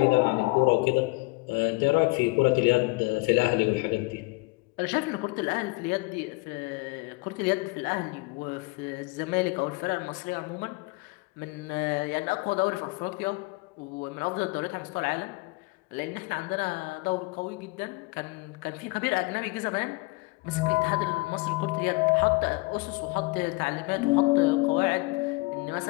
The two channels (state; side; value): quieter; right; 25.7 dB